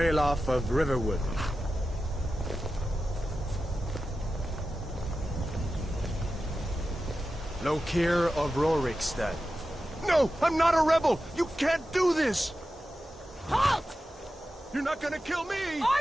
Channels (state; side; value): normal; both; correlation 0.92